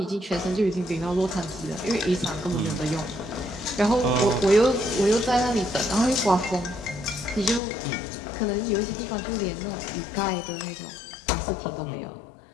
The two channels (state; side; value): drops out; right; at 7.6 s